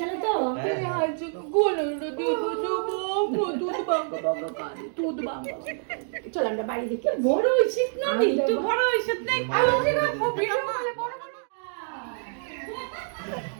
তো? হ্যাঁ। হাসো গোলটা দিয়ে বুঝবো দুধ বাঙ্গা বাঙ্গা কানে দুধ বাঙ্গা। চল আমরা বাড়ি দেখি। বড় হইছিস না রে? তো বড় হইছিস না? আলো দিনা ভিডিও করে বড় বড়।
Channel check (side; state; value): left; silent; digital silence